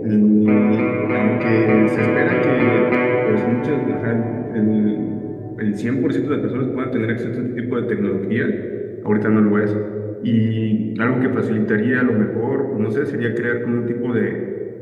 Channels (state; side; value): identical; both; correlation 1.00